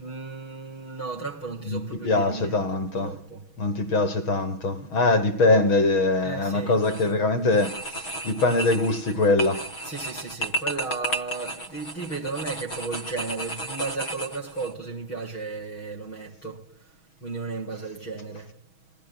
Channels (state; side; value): late; right; 6.3 ms